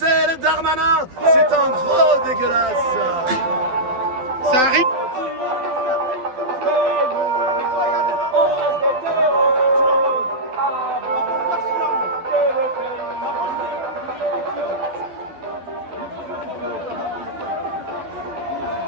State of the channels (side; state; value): left; late; 12 ms